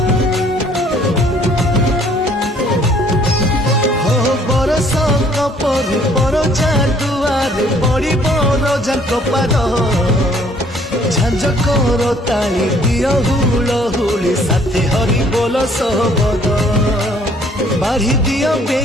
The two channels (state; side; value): normal; both; correlation 0.61